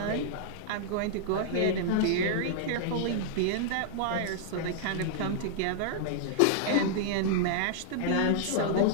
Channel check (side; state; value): both; different; correlation -0.01